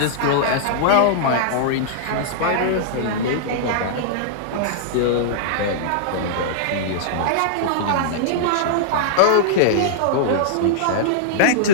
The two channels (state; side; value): different; both; correlation -0.02